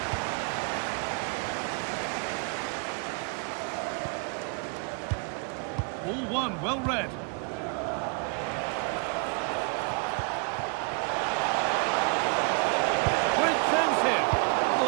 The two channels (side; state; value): left; quieter; 36.6 dB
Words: Ball one, well read. Great chance here.